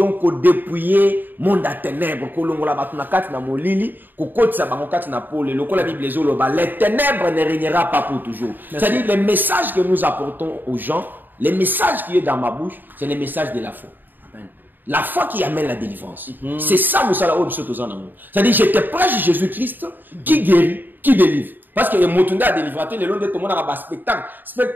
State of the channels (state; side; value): late; left; 0.091 ms